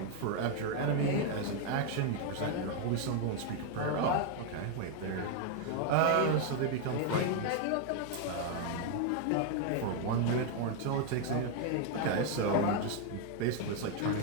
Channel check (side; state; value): both; different; correlation 0.01